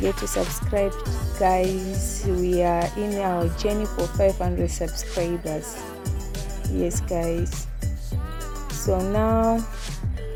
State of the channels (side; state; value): both; identical; correlation 1.00